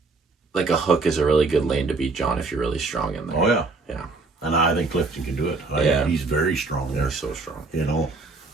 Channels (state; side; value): quieter; left; 3.8 dB